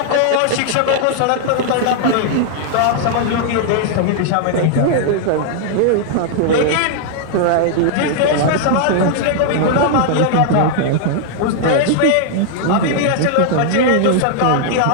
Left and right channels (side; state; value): both; different; correlation 0.00